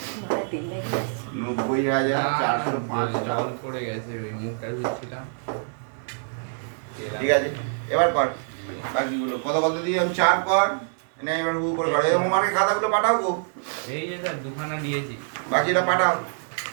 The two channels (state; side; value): silent; left; digital silence